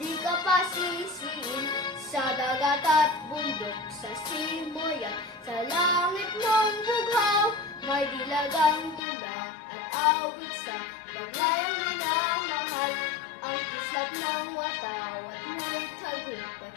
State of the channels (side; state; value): right; drops out; at 9.0 s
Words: ka pasisiin, sa dagat at bundok, sa simoy at sa langit mong bughaw, may dilagang tula at awit sa paglayang minamahal, ang kislap ng watawat mo'y tagumpay